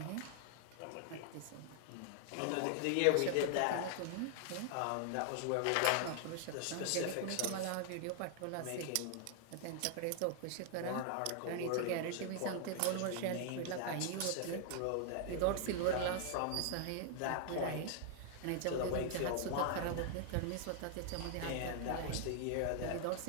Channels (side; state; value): both; different; correlation 0.00